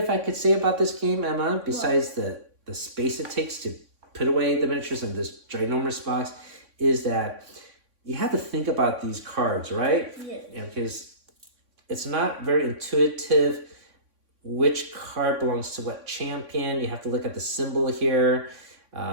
I could say about this game, Emma, besides the space it takes to put away the miniatures in this ginormous box, is that you have to think about these cards, right? Yeah. Because it's not very intuitive which card belongs to what champion. You have to look at the symbol here.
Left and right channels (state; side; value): late; left; 3.6 ms